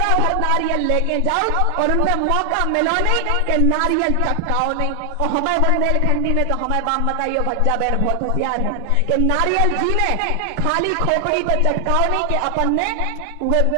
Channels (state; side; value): different; both; correlation 0.00